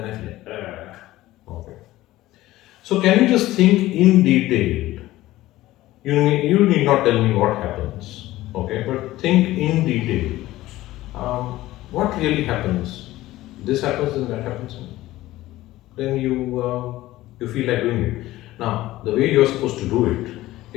I feel like, okay. So, can you just think in detail? You need not tell me what happens, okay, but think in detail. What really happens? This happens and that happens. Then you feel like doing it. Now, the way you're supposed to do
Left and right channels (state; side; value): quieter; right; 16.5 dB